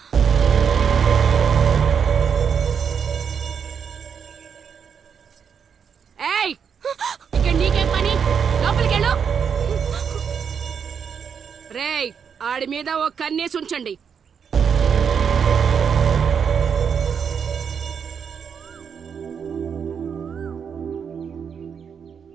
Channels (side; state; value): left; quieter; 7.0 dB